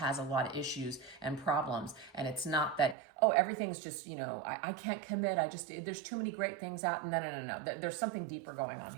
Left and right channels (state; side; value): drops out; left; at 3.0 s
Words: a lot of issues and problems. And it's not that, oh, everything's just, you know, I can't commit. There's too many great things out. No. There's something deeper going on